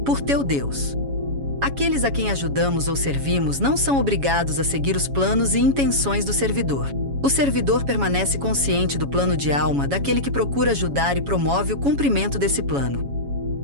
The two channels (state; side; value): late; left; 7.2 ms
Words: por teu Deus. Aqueles a quem ajudamos ou servimos não são obrigados a seguir os planos e intenções do servidor. O servidor permanece consciente do plano de alma daquele que procura ajudar e promove o cumprimento desse plano.